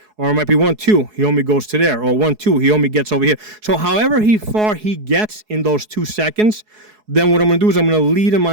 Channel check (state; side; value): late; left; 4.7 ms